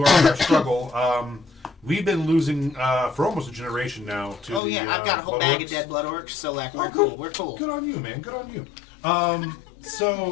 our struggle. We've been losing for almost a generation now to Oh yeah, I've got a whole blood bag orcs. of dead blood orcs, so like we're good. cool. We're cool. Good on you, man. Good on you.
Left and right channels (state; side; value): drops out; right; at 4.6 s